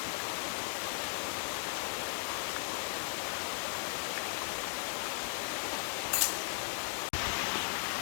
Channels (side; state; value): right; silent; digital silence